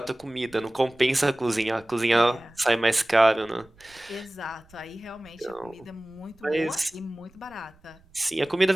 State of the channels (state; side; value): noise; right; rumble, 28 dB below the sound